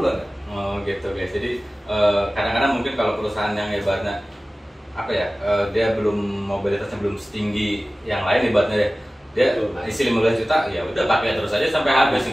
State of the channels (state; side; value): normal; both; correlation 0.97